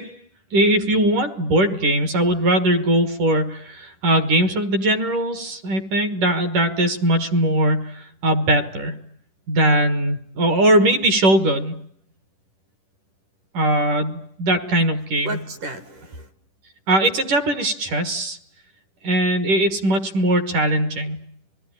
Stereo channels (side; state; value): left; late; 10 ms